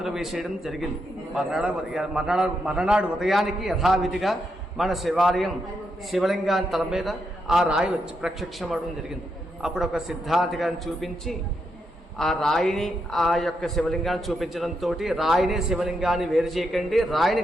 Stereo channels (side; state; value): both; normal; correlation 0.82